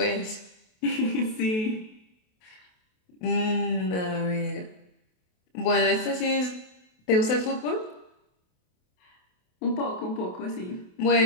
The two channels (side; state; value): right; late; 28 ms